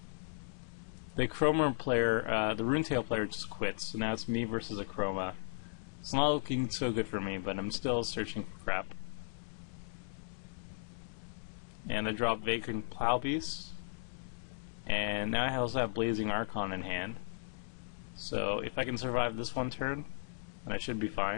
The Chroma player, the Runetail player just quits, so now it's me versus a Chroma. It's not looking so good for me, but I'm still searching for crap. And I drop Vagrant Plowbeast, and now I also have Blazing Archon in hand. So if I can survive this one turn, then I should be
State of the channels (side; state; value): right; silent; digital silence